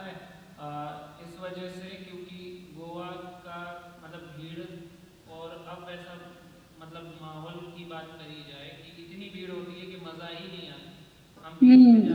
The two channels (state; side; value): identical; both; correlation 1.00